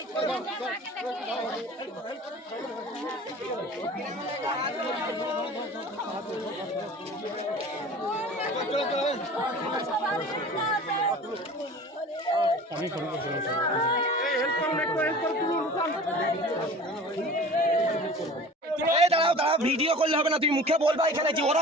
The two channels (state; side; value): normal; both; correlation 0.41